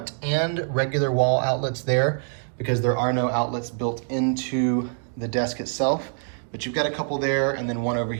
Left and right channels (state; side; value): silent; left; 62 dB below the other